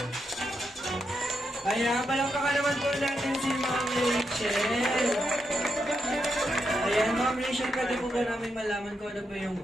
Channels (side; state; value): both; normal; correlation 0.83